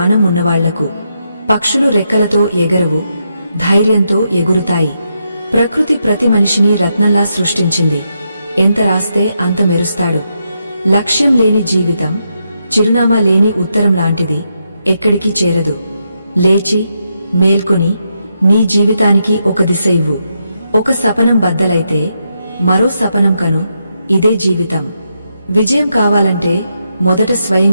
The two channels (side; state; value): both; inverted; correlation -0.82